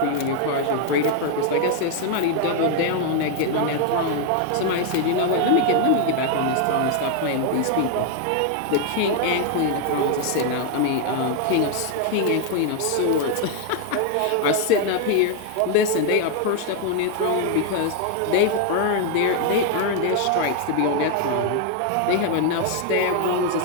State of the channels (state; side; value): different; both; correlation 0.00